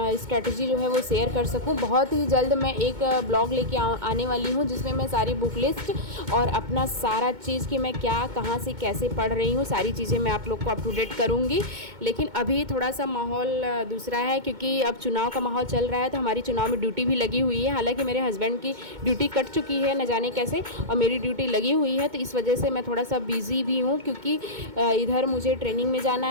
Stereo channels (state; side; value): late; left; 2.2 ms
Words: जो है वो शेयर कर सकूं। बहुत ही जल्द मैं एक ब्लॉग लेके आने वाली हूं, जिसमें मैं सारी बुक लिस्ट और अपना सारा चीज़ कि मैं क्या कहाँ से कैसे पढ़ रही हूँ, सारी चीज़ें मैं आप लोग को अप टू डेट करूँगी। लेकिन अभी थोड़ा सा माहौल दूसरा है, क्योंकि अब चुनाव का माहौल चल रहा है, तो हमारी चुनाव में ड्यूटी भी लगी हुई है। हालांकि मेरे हस्बैंड की ड्यूटी कट चुकी है न जाने कैसे, और मेरी ड्यूटी लगी हुई है, तो इस वजह से मैं थोड़ा सा बिज़ी भी हूँ, क्योंकि इधर मुझे ट्रेनिंग में जाना